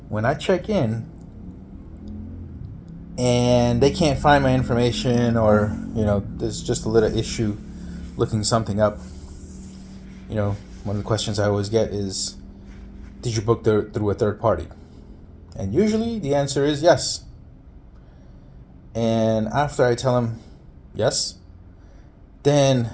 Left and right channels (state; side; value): identical; both; correlation 1.00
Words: when I check in and they can't find my information, or there's just a little issue looking something up, one of the questions I always get is, did you book through a third party? And usually the answer is yes. And after I tell them yes, then